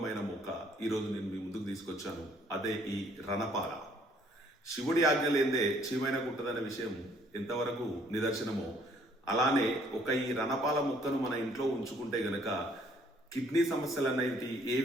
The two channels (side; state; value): both; normal; correlation 0.62